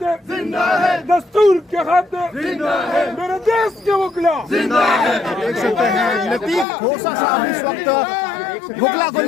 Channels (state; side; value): drops out; right; at 6.7 s